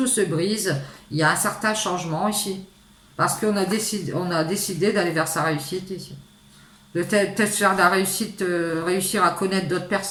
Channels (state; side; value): identical; both; correlation 1.00